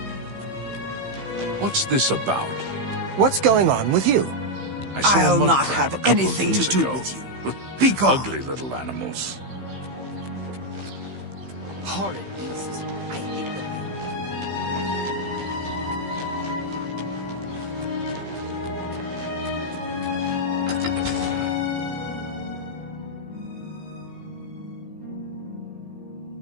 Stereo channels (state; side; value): late; left; 15 ms